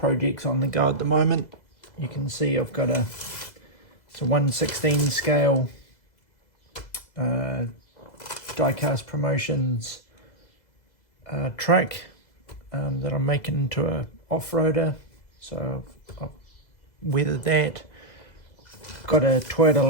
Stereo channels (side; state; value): right; late; 2.0 ms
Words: on the go at the moment. You can see I've got it's a 1/16 scale Diecast Promotions truck that I'm making into a off-roader. So I've weathered that. Got a Toyota